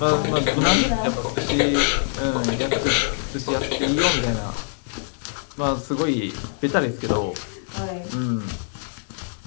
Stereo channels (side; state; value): right; silent; digital silence